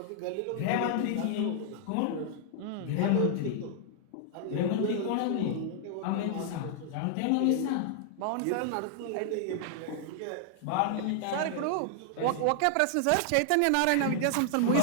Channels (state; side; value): different; both; correlation 0.00